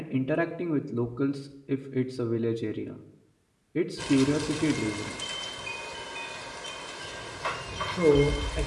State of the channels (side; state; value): both; identical; correlation 1.00